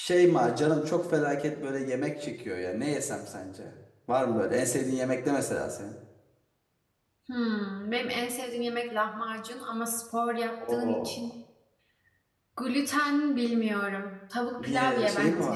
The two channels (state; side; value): identical; both; correlation 1.00